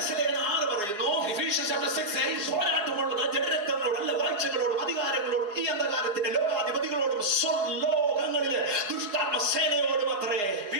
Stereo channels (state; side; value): late; left; 4.9 ms